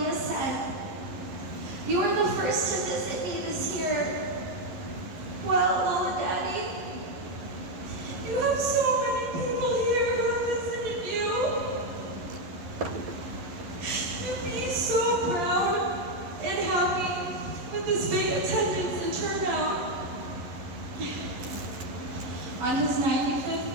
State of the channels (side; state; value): left; late; 11 ms